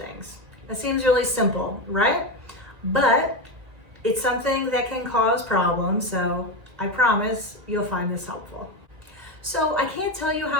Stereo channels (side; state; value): left; late; 1.9 ms